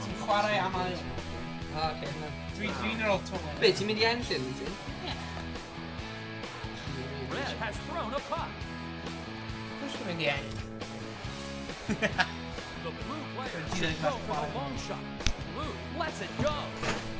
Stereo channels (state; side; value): identical; both; correlation 1.00